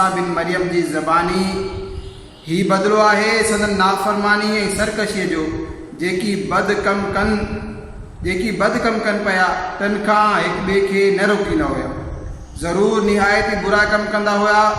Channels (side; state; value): both; identical; correlation 1.00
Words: बिन मरियम जी ज़बानी। ही बदिलो आहे संदन नाफ़रमानी ऐं सरकशीअ जो जेकी बद कम कन पिया तन खां हिक ॿिए खे न रोकींदा हुआ। ज़रूर निहायत बुरा कम कंदा हुआ।